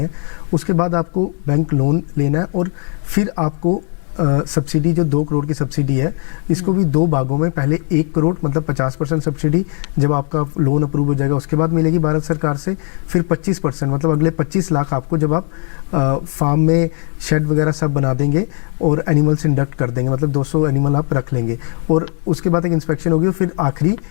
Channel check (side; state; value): right; quieter; 39.1 dB